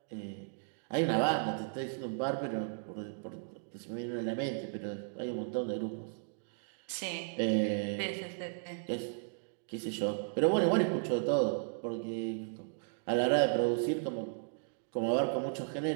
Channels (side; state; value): left; silent; digital silence